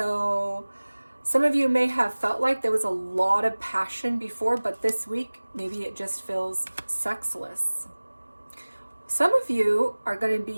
some of you may have felt like there was a lot of passion before, but this week, maybe it just feels sexless. Some of you are going to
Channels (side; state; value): both; inverted; correlation -1.00